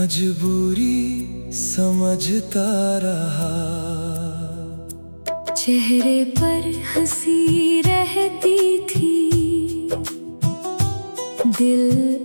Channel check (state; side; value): inverted; both; correlation -1.00